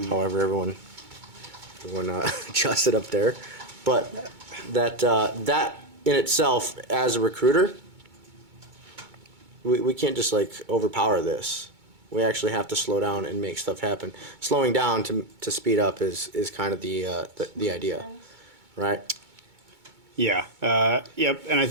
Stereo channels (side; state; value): left; late; 2.2 ms